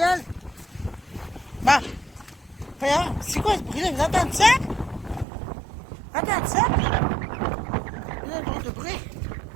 Bon. Voyons, c'est quoi ce bruit-là? Vous entendez ça? Entendez ça? Il y a un drôle de bruit.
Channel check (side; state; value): left; drops out; at 5.2 s